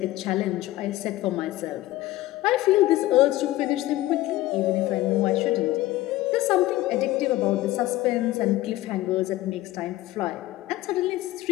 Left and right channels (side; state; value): right; quieter; 16.6 dB